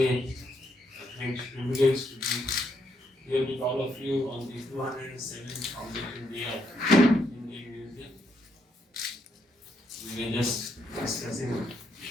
a great privilege to be here with all of you on the 207th Foundation Day of Indian Museum. We were just discussing a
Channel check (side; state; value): both; normal; correlation 0.76